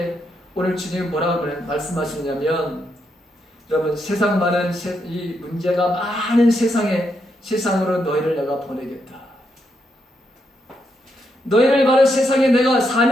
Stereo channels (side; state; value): both; normal; correlation 0.80